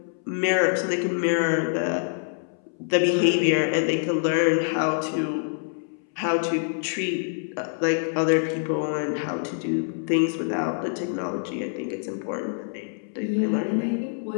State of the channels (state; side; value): silent; right; 61 dB below the other